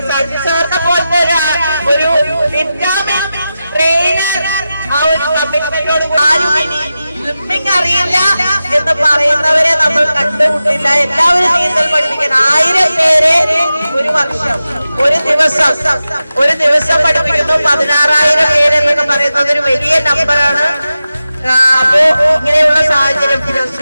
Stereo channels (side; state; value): both; inverted; correlation -0.92